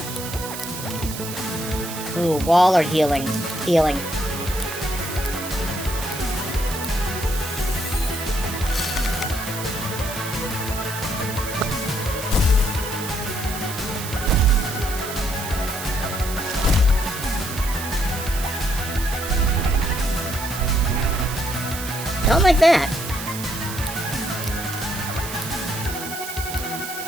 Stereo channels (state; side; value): noise; right; hiss, 8 dB below the sound